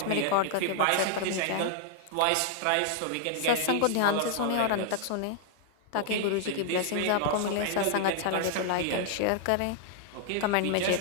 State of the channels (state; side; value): different; both; correlation 0.00